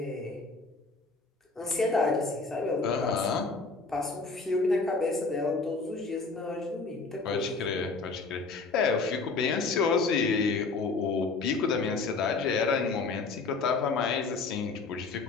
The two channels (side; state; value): right; quieter; 4.1 dB